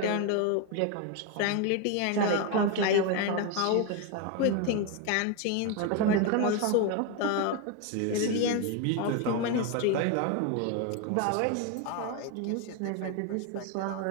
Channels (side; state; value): both; different; correlation 0.02